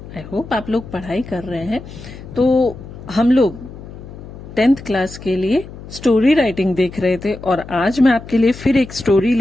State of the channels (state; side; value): noise; left; hum, 15 dB below the sound